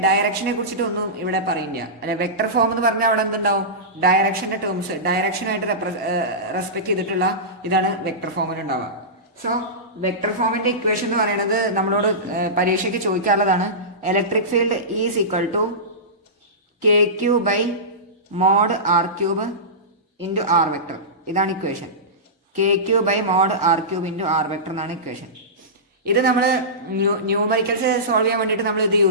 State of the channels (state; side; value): normal; both; correlation -0.19